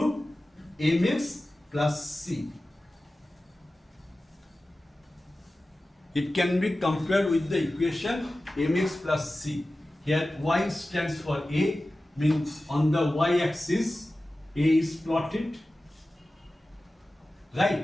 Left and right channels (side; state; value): both; normal; correlation 0.95